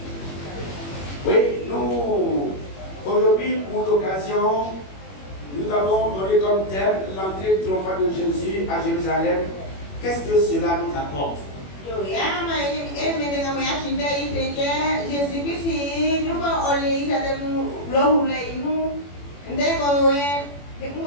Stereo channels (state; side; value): late; right; 21 ms